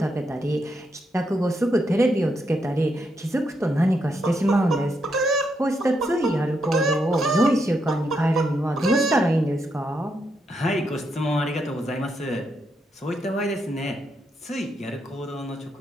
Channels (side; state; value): both; normal; correlation 0.80